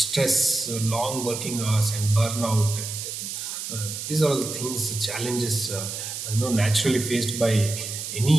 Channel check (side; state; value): right; noise; hiss, 6 dB below the sound